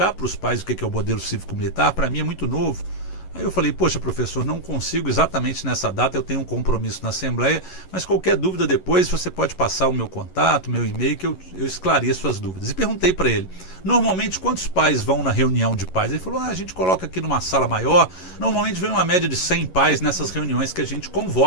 para os pais o que é o modelo cívico-militar? Para mim é muito novo. Aí eu falei: poxa, professor, não consigo exatamente nessa data, eu tenho um compromisso na Assembleia, mas qualquer dúvida depois você pode passar o meu contato, meu e-mail, que eu esclareço as dúvidas. E perguntei para ele: normalmente quantos pais vão na reunião de pais? Ele falou: a gente coloca aqui numa sala maior, normalmente vem uma média de 100 pais nessas reuniões que a gente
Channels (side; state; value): right; late; 11 ms